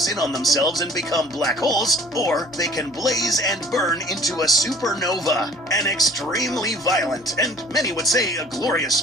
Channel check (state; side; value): normal; both; correlation 0.51